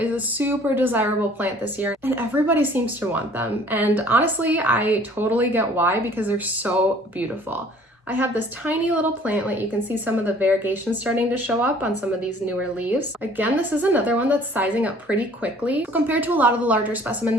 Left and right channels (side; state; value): both; normal; correlation 0.54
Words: a super desirable plant this year, and everybody seems to want them. And honestly, I totally get why, because they're so beautiful. I have this tiny little plantlet. You can see some of the variegation starting to show up on some of these newer leaves. Again, this is another one that's sizing up pretty quickly. Compared to a lot of the larger specimen